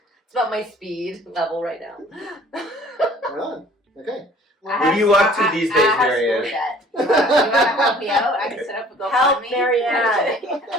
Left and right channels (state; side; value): normal; both; correlation 0.52